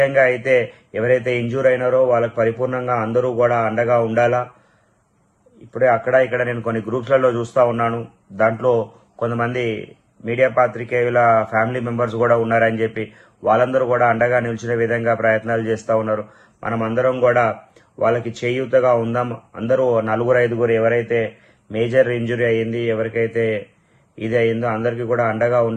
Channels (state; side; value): identical; both; correlation 1.00